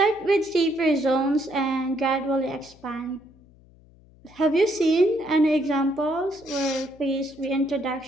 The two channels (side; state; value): left; noise; hum, 27 dB below the sound